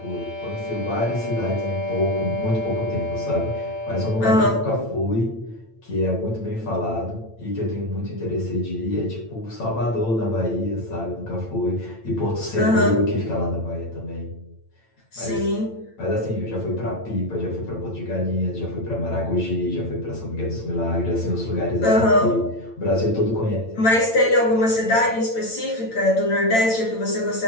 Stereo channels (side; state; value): right; late; 8.9 ms